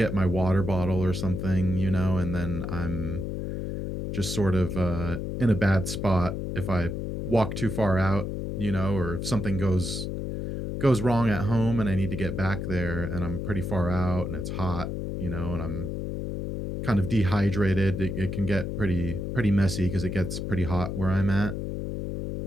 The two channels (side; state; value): left; noise; hum, 4 dB below the sound